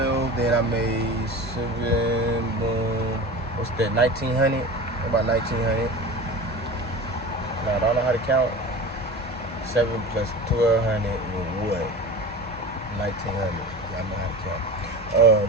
Then I made 7. Boom. What's that? 1,900. About 1900. Now I don't know how to count. 7 plus 1200 is what? 1900. Yeah, I know how to count.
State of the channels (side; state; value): both; normal; correlation 0.33